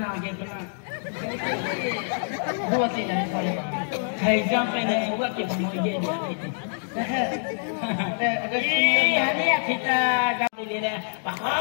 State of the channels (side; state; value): right; silent; digital silence